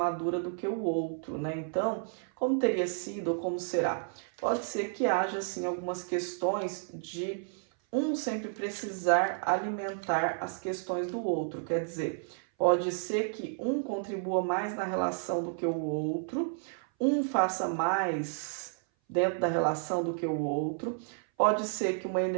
do que o outro, né? Então, como teria sido ou como será? Pode ser que haja, assim, algumas questões de um sempre precisar alimentar as questões do outro. Quer dizer, pode ser que um contribua mais na relação do que o outro, um faça mais dentro da relação do que o outro. Pode ser que uma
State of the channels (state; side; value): silent; left; 57 dB below the other